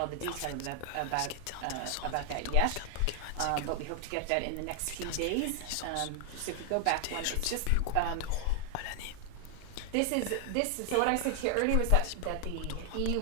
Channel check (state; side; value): different; both; correlation 0.00